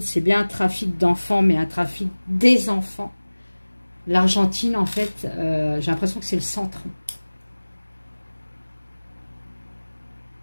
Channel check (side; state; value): both; inverted; correlation -1.00